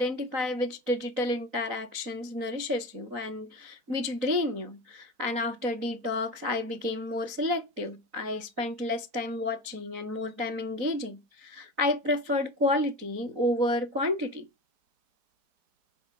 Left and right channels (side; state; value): left; late; 4.0 ms